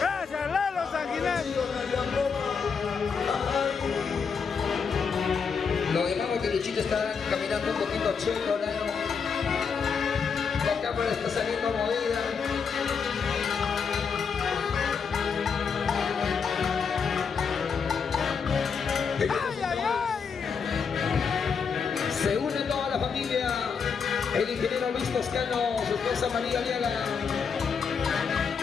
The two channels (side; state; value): right; quieter; 6.0 dB